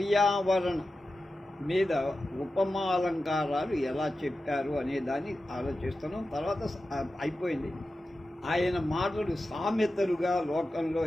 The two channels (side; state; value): both; normal; correlation 0.93